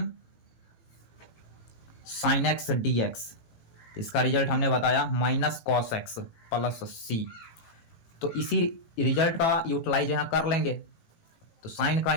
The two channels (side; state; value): right; late; 18 ms